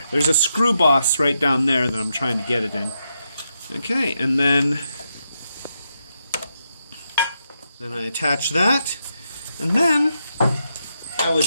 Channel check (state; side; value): inverted; both; correlation -0.83